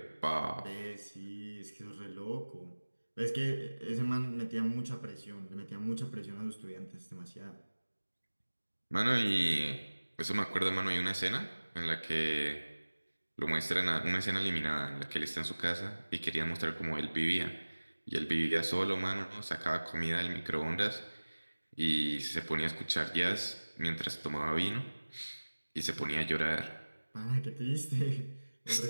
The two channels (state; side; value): inverted; both; correlation -1.00